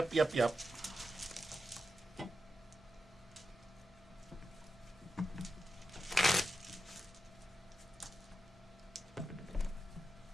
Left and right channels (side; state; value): both; normal; correlation 0.88